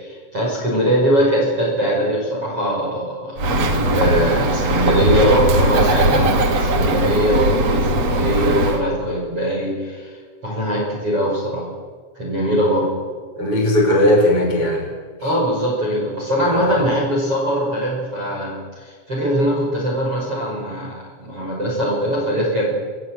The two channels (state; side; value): late; left; 8.0 ms